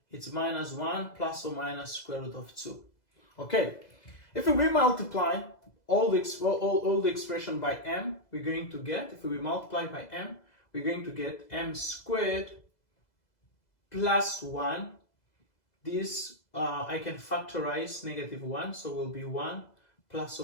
It's minus 1 plus or minus square root of 2. Okay, if we multiply all the expression by m, we're going to get, if we multiply by m, we're going to get m squared plus 1. This I can factorize negative 1, so will be 1 plus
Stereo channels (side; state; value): right; late; 2.0 ms